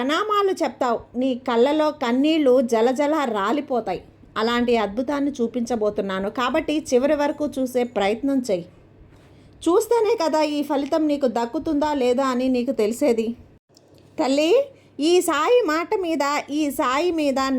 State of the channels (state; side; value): identical; both; correlation 1.00